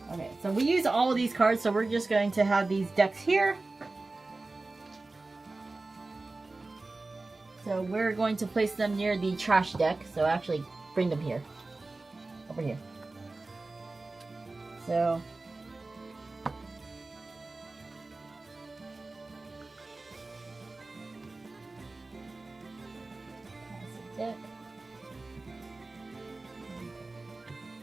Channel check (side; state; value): left; quieter; 3.3 dB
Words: Okay, so we use all of these cards, so we're just going to have these decks here. So we're going to place them near the trash deck. So actually, bring them here. Over here. So... deck.